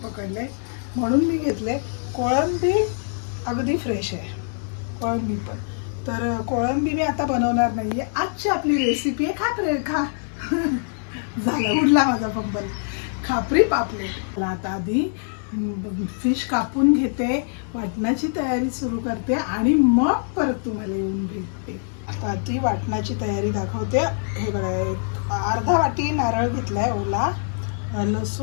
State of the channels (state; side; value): silent; right; 63 dB below the other